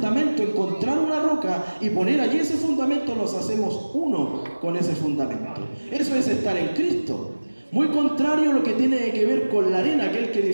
encontrar una roca y poner allí ese fundamento, nos hacemos uno con ese fundamento. Eso es estar en Cristo. Muy contrario a lo que tiene que ver con la arena, aquel que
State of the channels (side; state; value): both; inverted; correlation -1.00